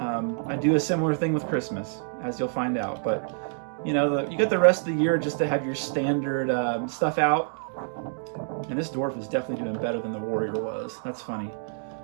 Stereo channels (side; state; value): left; silent; digital silence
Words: do a similar thing with Christmas, as you'll find out, but you got the rest of the year just to have your standard stuff out. And this dwarf is definitely doing better than the warrior was. That's funny.